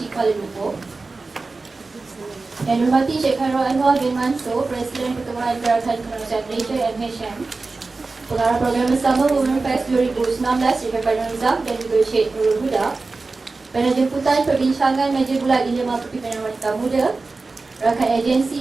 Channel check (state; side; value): quieter; left; 3.7 dB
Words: Kuala Lumpur. Yang dihormati Sheikh Khairul Anwar bin Mansur, Presiden Pertubuhan Gerakan Kemanusiaan Malaysia MHM, Pengarah Program Bersama Women Fest 2019 Sheikh Razak dan juga Sheikh Nurul Huda. Panel jemputan perbincangan meja bulat Dilema Kepimpinan Wanita Muda, rakan